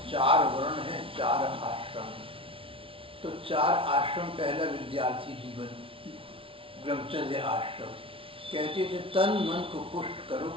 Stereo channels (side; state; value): left; late; 0.26 ms